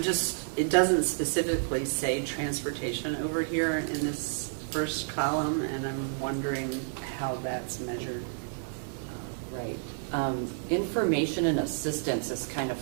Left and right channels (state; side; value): silent; left; digital silence